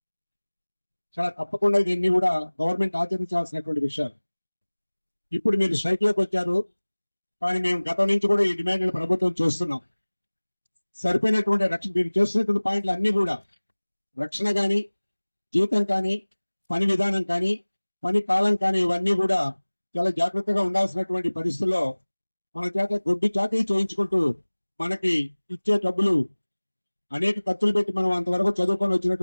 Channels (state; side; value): inverted; both; correlation -1.00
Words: చాలా తప్పకుండా దీన్ని కూడా గవర్నమెంట్ ఆచరించాల్సినటువంటి విషయాలు. ఇప్పుడు మీరు స్ట్రైక్లోకి వచ్చారు, కానీ మేము గతం నుంచి కూడా ఈ డిమాండ్లు ప్రభుత్వం చూస్తున్నాం. సరిపోయినటువంటి రక్షణ, మీరు చేస్తున్నటువంటి పాయింట్లు అన్నీ కూడా రక్షణ కానీ, జీతం కానీ, పని విధానం కానీ, పని కాలం కానీ, ఇవన్నీ కూడా చాలా జాగ్రత్తగా ఉండాల్సినటువంటి పరిస్థితుల్లో మన చేత గొడ్డు చాకరీ చేయించుకుంటూ మనకి ఇచ్చే డబ్బులు అనేక ఖర్చులు పెట్టి మనం అంతవరకు చదువుకొని